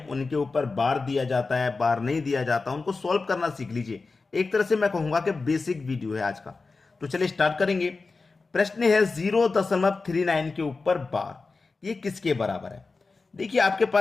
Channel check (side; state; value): right; quieter; 4.0 dB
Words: उनके ऊपर बार दिया जाता है, बार नहीं दिया जाता, उनको सॉल्व करना सीख लीजिए। एक तरह से मैं कहूंगा कि बेसिक वीडियो है आज का। तो चलिए स्टार्ट करेंगे। प्रश्न है 0.39 के ऊपर बार, ये किसके बराबर है? देखिए, आपके